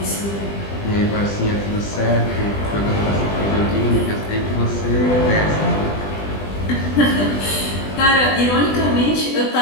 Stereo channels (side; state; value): right; late; 20 ms